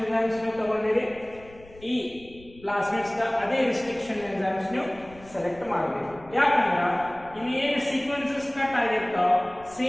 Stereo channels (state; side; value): noise; left; rumble, 22 dB below the sound